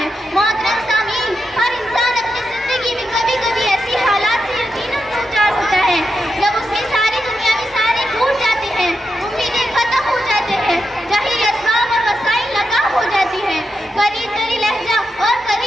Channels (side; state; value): both; normal; correlation 0.87